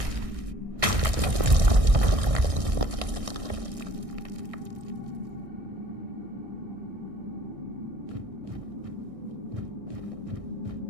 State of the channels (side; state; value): left; late; 1.6 ms